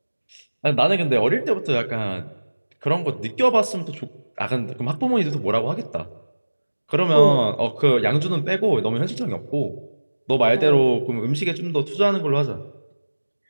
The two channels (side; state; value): both; inverted; correlation -1.00